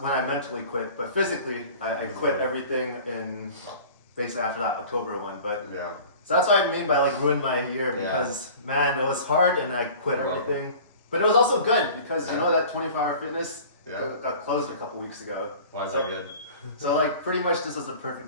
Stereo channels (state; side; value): inverted; both; correlation -0.43